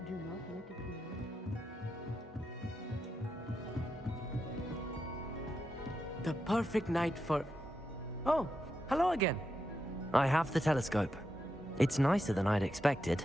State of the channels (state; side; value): normal; both; correlation 0.85